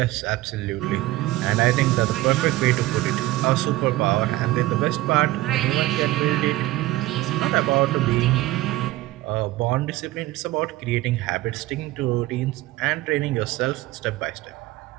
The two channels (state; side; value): quieter; left; 17.5 dB